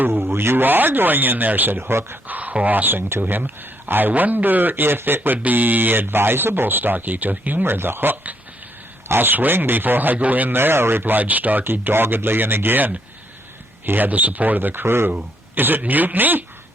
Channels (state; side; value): normal; both; correlation 0.72